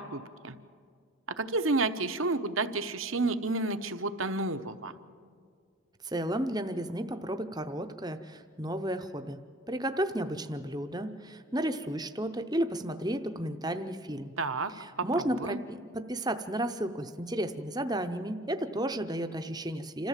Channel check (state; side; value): normal; both; correlation 0.44